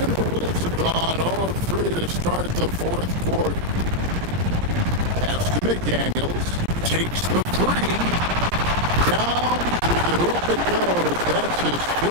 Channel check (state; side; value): late; left; 17 ms